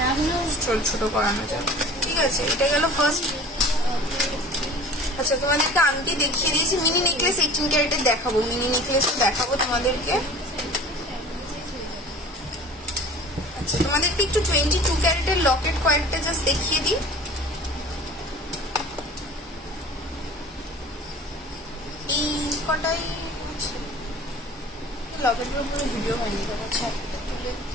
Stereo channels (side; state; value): both; normal; correlation 0.43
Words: ছোট করানো যাবে, ঠিক আছে? এটা গেল ফার্স্ট। আচ্ছা, তোমাদেরকে আংটি দেখিয়ে দিয়েছি। মিনি নেকলেস 18 ক্যারেটের দেখাবো, মিনি নেকলেস দেখাবো তোমাদেরকে। আচ্ছা, তোমাদেরকে একটু 22 ক্যারেটের লকেট কয়েকটা জাস্ট দেখিয়ে দিই। এই কটাই লকেটের উপরে ভিডিও হয়নি, আচ্ছা